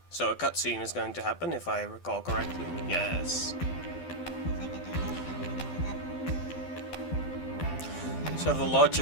So a cutscene is going to happen, if I recall correctly. Yes. So the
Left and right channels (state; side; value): late; right; 12 ms